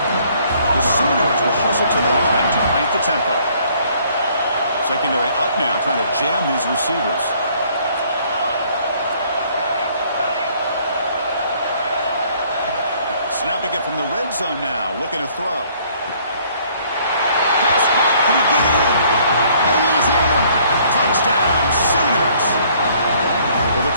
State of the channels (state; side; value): inverted; both; correlation -0.61